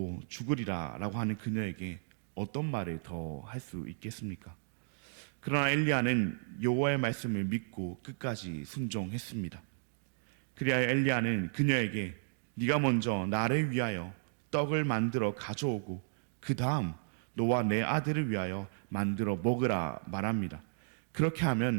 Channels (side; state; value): left; silent; digital silence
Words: 죽으리라 라고 하는 그녀에게 어떤 말을 더 할 수 있겠습니까? 그러나 엘리야는 여호와의 말씀을 믿고 끝까지 순종했습니다. 그리하여 엘리야는 그녀에게 네가 먼저 나를 위하여 떡을 만들어 가져오고 그 다음 너와 내 아들을 위하여 만들어 먹으라 말합니다. 그렇게